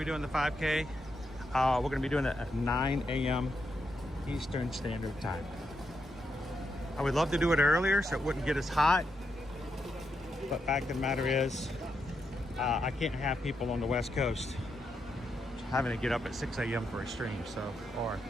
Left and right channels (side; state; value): both; normal; correlation 0.82